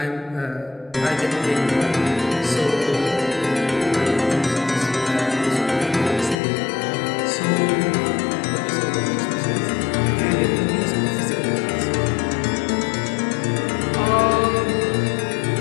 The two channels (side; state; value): right; drops out; at 6.4 s